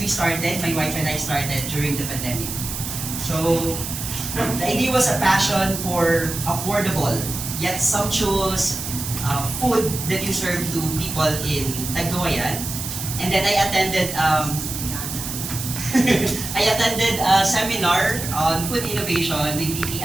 we started, my wife and I started during the pandemic. So, the idea was a passion for affordable yet sumptuous food that you serve to people in Tagkawayan. And then I attended a seminar on food innovation with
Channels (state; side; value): noise; right; hiss, 6 dB below the sound